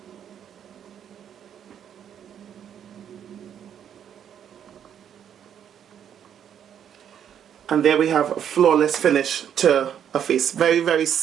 And there we have a flawless finish to a face. Very, very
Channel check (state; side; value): quieter; left; 9.1 dB